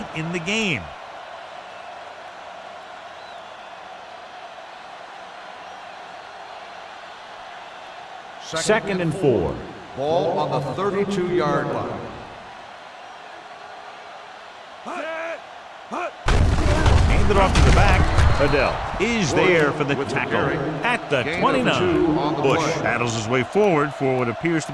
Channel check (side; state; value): both; identical; correlation 1.00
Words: in the game. Second and 4. Ball on the 32-yard line. Hand it off to the back. Adele is there for the tackle at the 29. Bush battles his way forward for what appears to